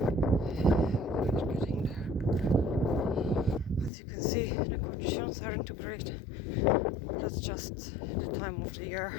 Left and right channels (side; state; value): right; drops out; at 3.9 s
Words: As you can see, the conditions aren't too great. That's just the time of the